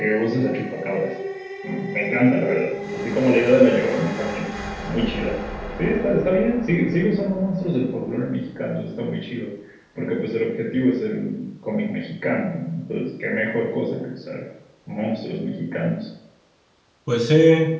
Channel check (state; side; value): identical; both; correlation 1.00